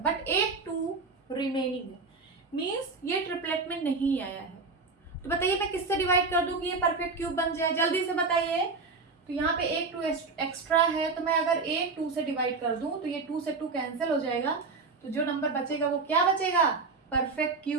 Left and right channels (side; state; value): left; quieter; 4.2 dB